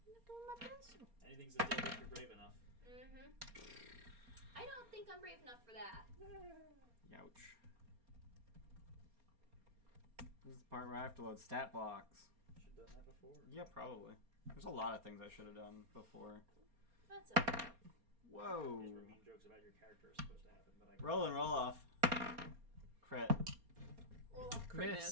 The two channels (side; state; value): left; late; 4.3 ms